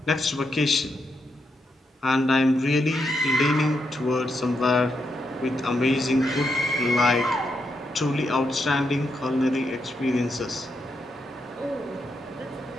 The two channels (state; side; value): normal; both; correlation 0.82